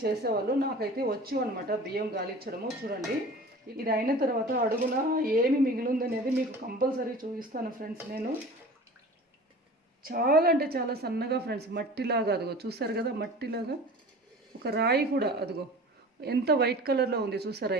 చేసేవాళ్ళు. నాకైతే వచ్చు అనమాట బియ్యం గాలించడము. చూడండి, ఇది అయిన తర్వాత అడుగున ఏమి మిగిలిందనేది మీకు కంపల్సరీ చూపిస్తాను ఫ్రెండ్స్. నేను చాలా అంటే చాలా సన్నగా ఫ్రెండ్స్, మట్టిలాగా, అదిగో చూసారు కదా, మట్టిలాగా ఒక రాయి కూడా, అదిగో ఎంత వైట్ కలర్లో ఉంది చూసారా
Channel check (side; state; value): both; normal; correlation 0.40